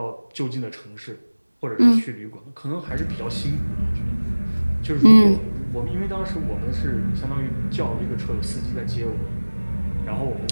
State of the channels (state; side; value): inverted; both; correlation -1.00